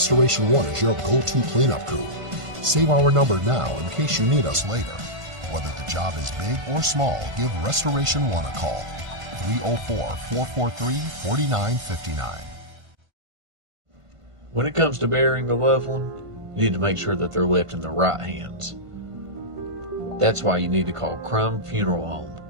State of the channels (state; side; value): late; left; 1.5 ms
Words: One is your go-to cleanup crew. Save our number now in case you need us later. Whether the job is big or small, give Restoration One a call. 304-443-4959. When it comes to burying a loved one, you need to make sure that they're left in the right hands. That's why you need to call Crum Funeral Home,